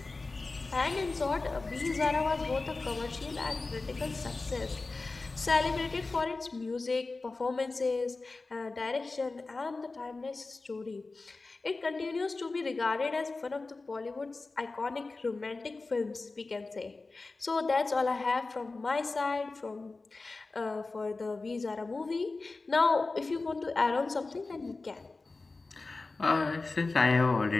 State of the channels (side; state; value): right; quieter; 3.6 dB